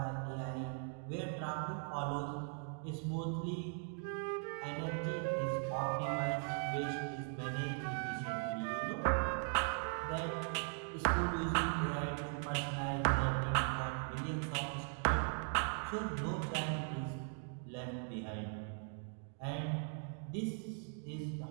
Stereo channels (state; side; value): silent; left; 51 dB below the other